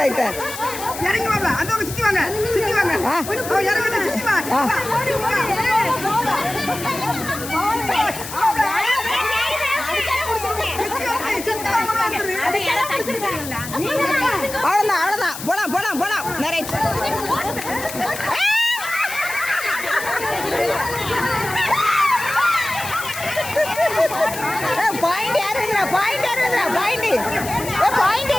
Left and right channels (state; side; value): noise; left; hiss, 10 dB below the sound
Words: இறங்கி வாங்க அந்த சுத்தி வாங்க அவ்வளோதான் போலாம் நிறைய பாயிண்ட் யார் எழுதுறா பாயிண்ட்